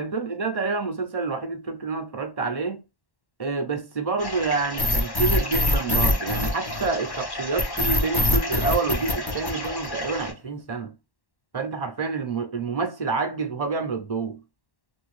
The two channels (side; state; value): right; late; 1.1 ms